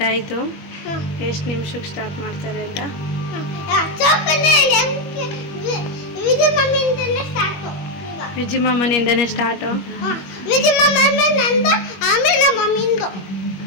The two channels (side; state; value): right; late; 21 ms